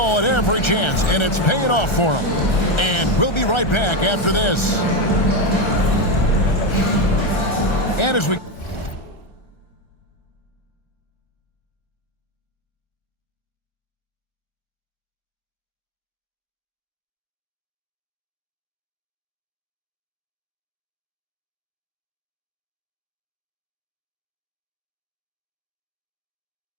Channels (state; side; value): late; right; 1.3 ms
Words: at every chance, and it's paying off for them. And we'll be right back after this. And as we...